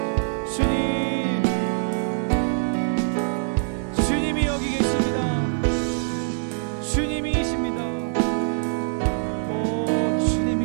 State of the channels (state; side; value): silent; left; digital silence